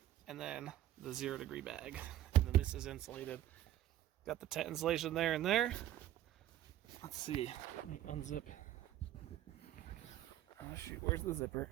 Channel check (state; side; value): quieter; left; 12.8 dB